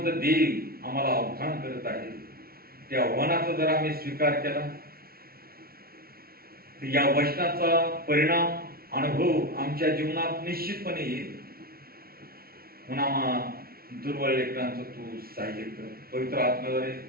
देव आम्हाला आव्हान करत आहे. त्या आव्हानाचा जर आम्ही स्वीकार केला तर या वचनाचा परिणाम, अनुभव आमच्या जीवनात निश्चितपणे येईल. म्हणून दुर्बळ लेकरांचं तू सहाय्य कर. पवित्र आत्म्याद्वारे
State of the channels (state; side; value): late; left; 0.44 ms